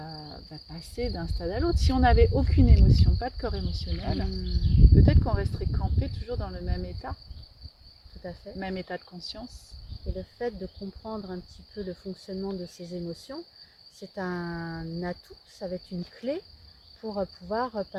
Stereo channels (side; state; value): both; identical; correlation 1.00